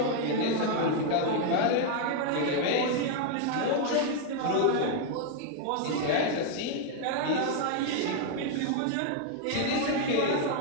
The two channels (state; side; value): different; both; correlation 0.00